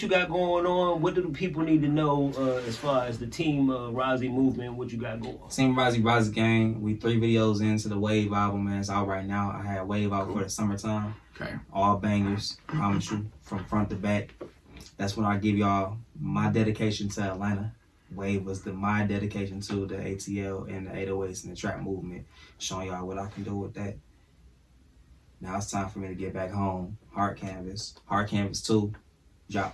you got going on? What do the people need to know as far as the Team Rozzy movement? What you got going on? Team Rozzy gang. We 3 videos into the Wave album, man. It's out right now. I had Wave out for the summertime. Okay. All bangers, promise you, from front to back. That's when I give y'all my dedication to Atlanta. Wave was my dedication to the ATL and the 808s and the trap movement, showing y'all what I can do with that. Now it's time for me to get back home. Hard Canvas 2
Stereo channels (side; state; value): both; identical; correlation 1.00